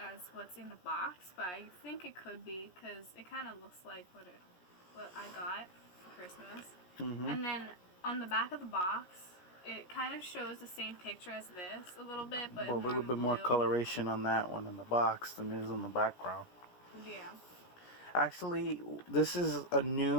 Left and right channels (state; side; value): late; right; 17 ms